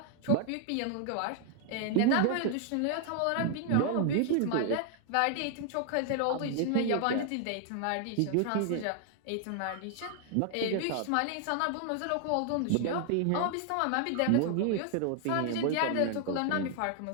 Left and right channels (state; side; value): different; both; correlation 0.00